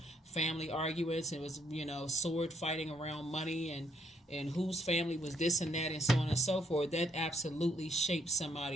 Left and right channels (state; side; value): normal; both; correlation 0.71